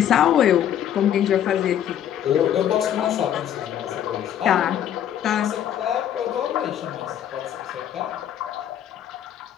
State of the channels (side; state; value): right; quieter; 10.3 dB